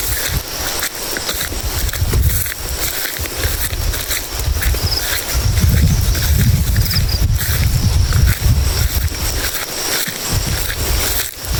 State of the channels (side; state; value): both; identical; correlation 1.00